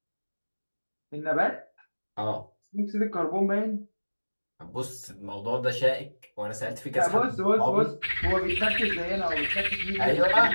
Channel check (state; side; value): inverted; both; correlation -1.00